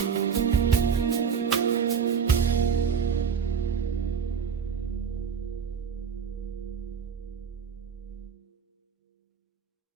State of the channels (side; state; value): left; quieter; 6.8 dB